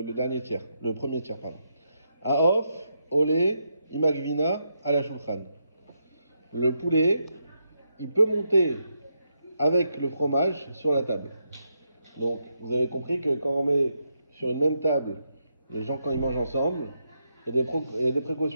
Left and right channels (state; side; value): inverted; both; correlation -0.81